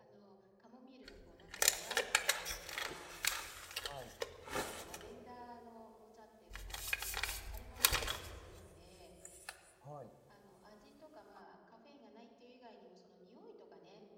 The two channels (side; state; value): both; identical; correlation 1.00